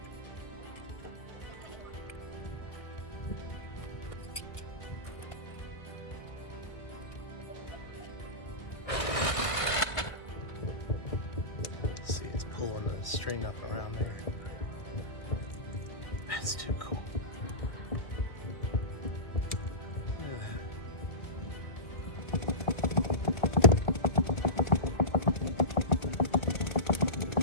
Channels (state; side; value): late; right; 2.0 ms